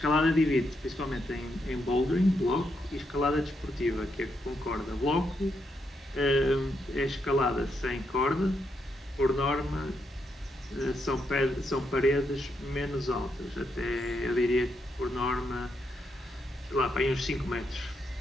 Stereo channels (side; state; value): both; normal; correlation 0.80